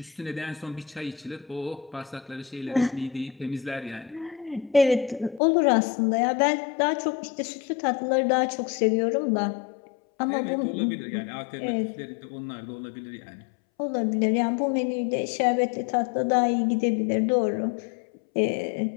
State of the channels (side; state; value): right; drops out; at 5.4 s